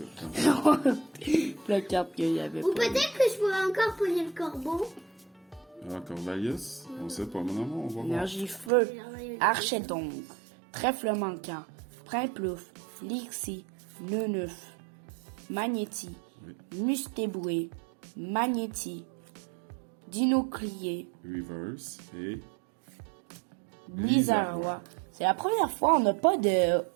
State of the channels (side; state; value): left; drops out; at 8.7 s